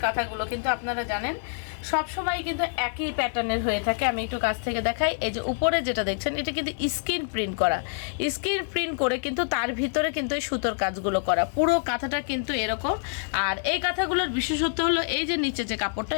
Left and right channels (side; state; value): right; silent; 60 dB below the other